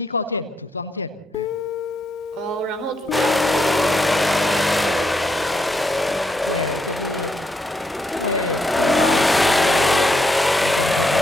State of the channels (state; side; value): normal; both; correlation 0.78